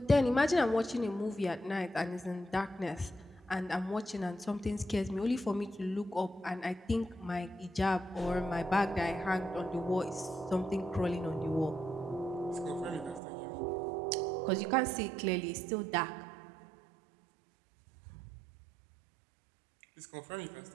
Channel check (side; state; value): left; drops out; at 13.2 s